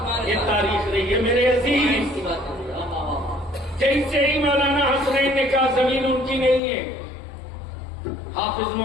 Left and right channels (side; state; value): right; drops out; at 6.6 s